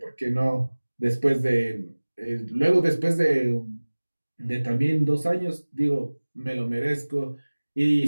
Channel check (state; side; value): inverted; both; correlation -1.00